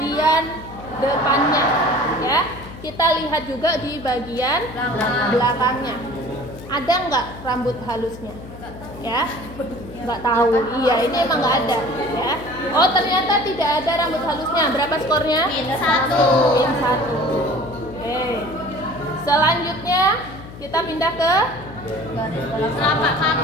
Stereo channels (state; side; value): noise; left; hum, 15 dB below the sound